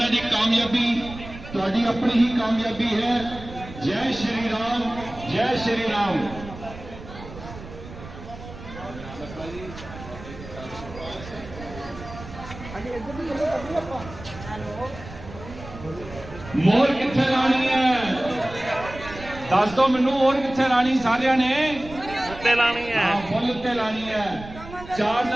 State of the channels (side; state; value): right; noise; rumble, 14 dB below the sound